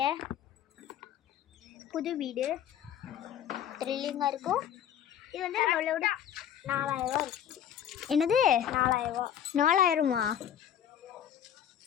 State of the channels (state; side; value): quieter; right; 9.9 dB